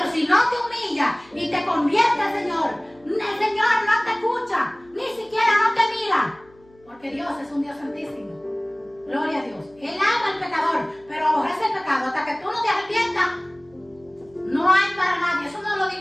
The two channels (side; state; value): left; noise; hum, 29 dB below the sound